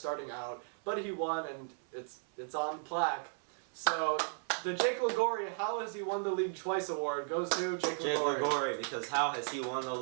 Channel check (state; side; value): silent; left; 54 dB below the other